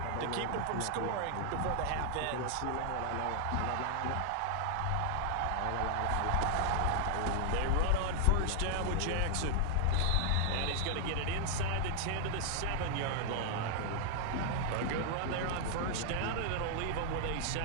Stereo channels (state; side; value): different; both; correlation 0.00